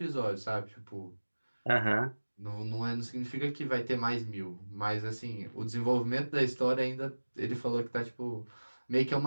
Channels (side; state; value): both; inverted; correlation -1.00